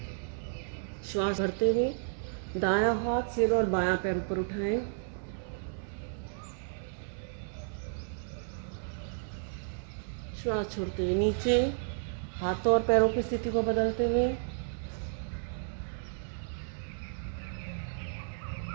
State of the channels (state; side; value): silent; left; digital silence